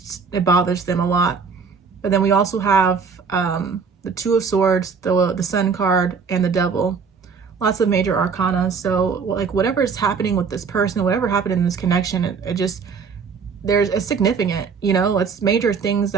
it bothers them a lot. But then we also have the Two of Swords, the Sun card, and the Devil. Lots of major arcana. So like whatever is happening with this person, whatever happened in this connection, it just, it's significant, you know, it's major things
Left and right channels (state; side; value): quieter; left; 5.6 dB